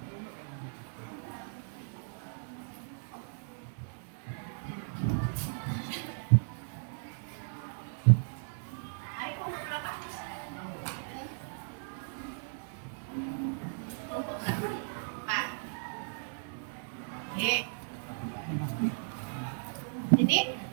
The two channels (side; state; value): left; silent; digital silence